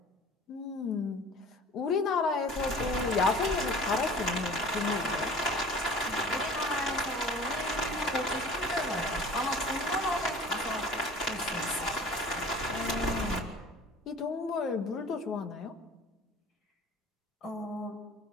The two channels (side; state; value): both; normal; correlation 0.43